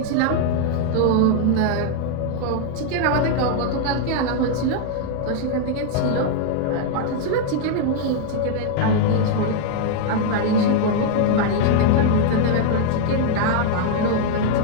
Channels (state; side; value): different; both; correlation 0.00